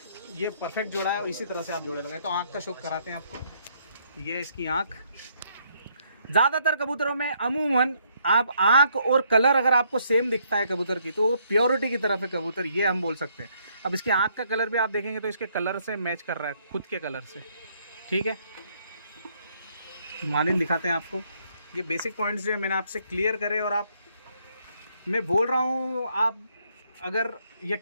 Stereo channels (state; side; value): inverted; both; correlation -0.70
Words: ये परफेक्ट जोड़ा है। इसी तरह से आप जोड़े लगाए। तो आँख का शौक कराते हैं आपको। ये इसकी आँख, ज़्यादातर कबूतरों में अमूमन आप आँख और कलर अगर आपको सेम दिखता है कबूतर की, तो वो प्योरिटी की तरफ है कबूतर, ये हम बोल सकते हैं। अब इसकी आँख का कलर भी आप देखेंगे तो इसके कलर से मैच कर रहा है, खुद के कलर से, ठीक है। मालिन दिखाते हैं आपको। ये बेसिक पॉइंट्स जो है मैंने आपसे क्लियर करे, और मैं बोल रहा हूँ आप अगर